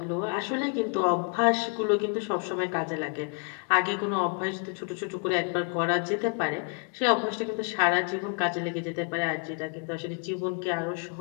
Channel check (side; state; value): right; quieter; 36.5 dB